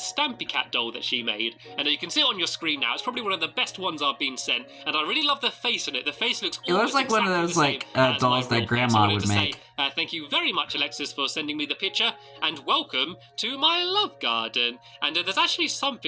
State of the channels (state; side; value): identical; both; correlation 1.00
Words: Cat doll that she made. And you can see it on your screen now. It's probably one of the best ones I've been sent. And I really love the face in it. The face looks It looks almost like one of exactly those, the like, same as dolls my that real Grandma face. I wanted would to make. say, thank you very much, Alexis, for sending me the picture. And welcome to my Love Garden. And there's actually